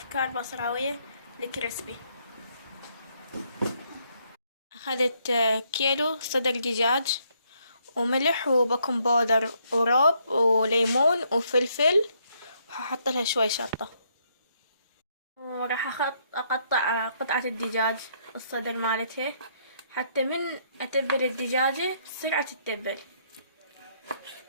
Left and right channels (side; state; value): both; inverted; correlation -0.72